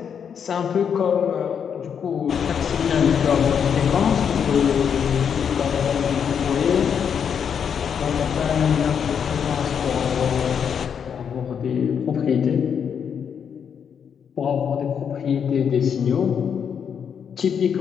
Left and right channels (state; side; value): quieter; right; 7.5 dB